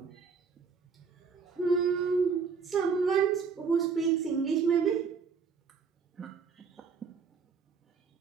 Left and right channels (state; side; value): quieter; left; 5.6 dB